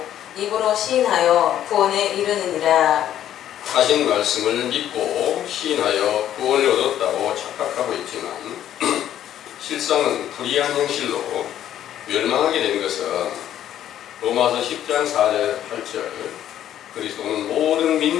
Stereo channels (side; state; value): right; quieter; 11.3 dB